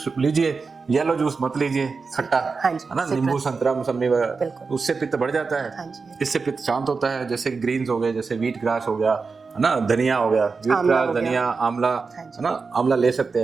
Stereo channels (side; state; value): left; quieter; 4.7 dB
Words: लीजिए, येलो जूस मत लीजिए, खट्टा है ना, नींबू संतरा मौसमी वगैरह, उससे पित्त बढ़ जाता है। इससे पित्त शांत होता है। जैसे ग्रीन्स हो गए, जैसे व्हीट ग्रास हो गया, है ना, धनिया हो गया, व्हीट ग्रास, धनिया, आंवला, है ना, आंवला ले सकते